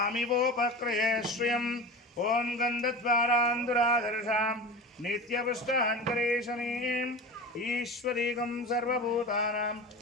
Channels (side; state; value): both; normal; correlation 0.30